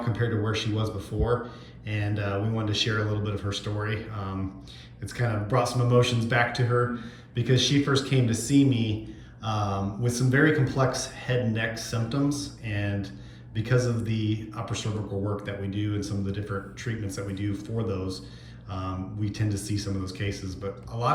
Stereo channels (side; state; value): both; identical; correlation 1.00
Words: to where she was before, and we wanted to share a little bit of her story. It's kind of brought some emotions back to her because she first came to see me with some very complex head and neck symptoms, and because of the upper cervical work that we do and some of the different treatments that we do for those, we tend to see some of those cases. But a